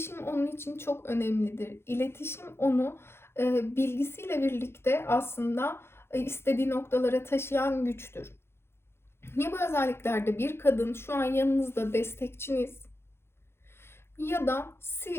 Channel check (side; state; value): right; late; 0.12 ms